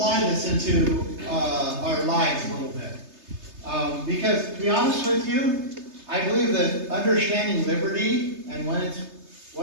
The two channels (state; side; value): late; left; 3.3 ms